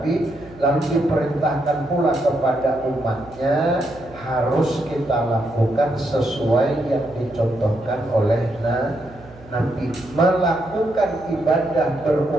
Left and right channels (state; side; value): noise; right; hum, 22 dB below the sound